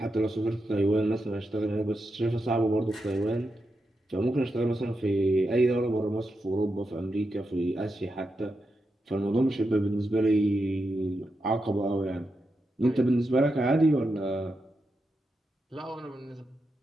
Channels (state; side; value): normal; both; correlation 0.87